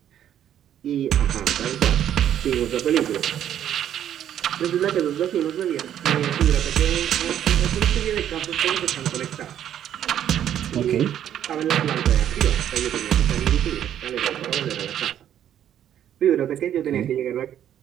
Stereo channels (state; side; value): quieter; left; 10.4 dB